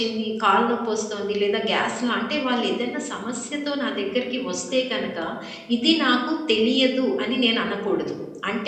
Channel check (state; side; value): identical; both; correlation 1.00